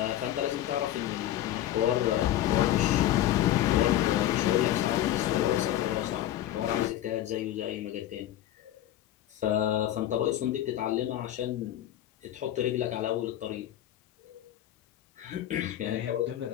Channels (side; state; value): right; quieter; 12.7 dB